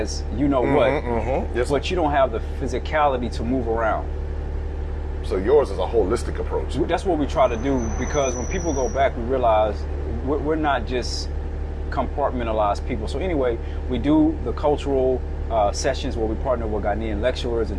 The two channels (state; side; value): identical; both; correlation 1.00